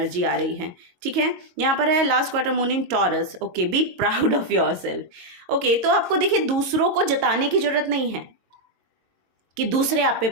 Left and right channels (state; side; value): late; left; 22 ms